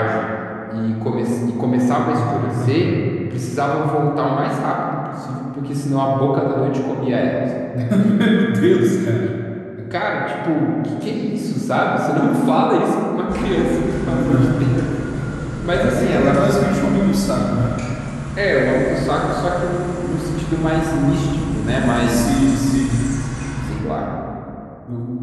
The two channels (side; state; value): both; identical; correlation 1.00